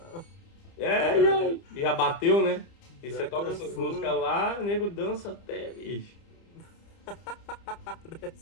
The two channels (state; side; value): late; right; 30 ms